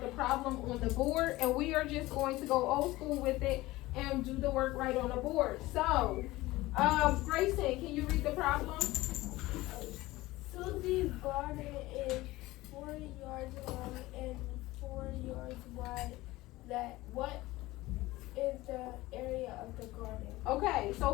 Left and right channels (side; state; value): right; quieter; 18.7 dB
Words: the problem on the board, and we are just going to go old school with it and do the work right on the board. So, Grayson, can you read the problem? Susie's garden is 40 yards long and 4 yards wide. What is the area of the garden? Okay, so